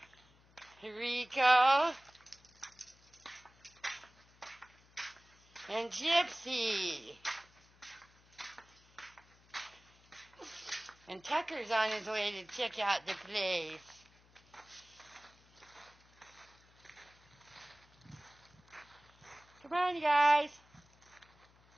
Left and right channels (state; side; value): noise; left; hum, 28 dB below the sound